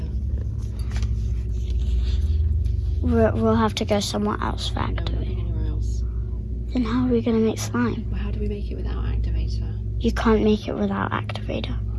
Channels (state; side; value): identical; both; correlation 1.00